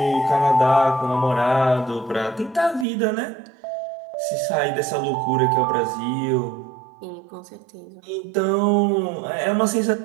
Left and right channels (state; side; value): drops out; left; at 2.9 s